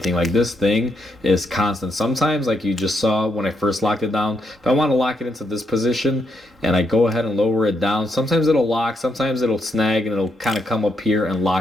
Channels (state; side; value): normal; both; correlation 0.78